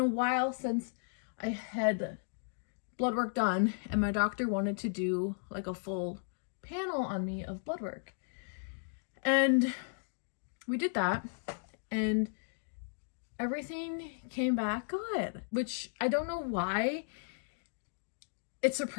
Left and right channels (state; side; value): silent; right; digital silence